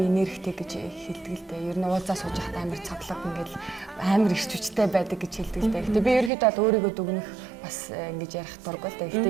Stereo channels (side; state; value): left; drops out; at 6.3 s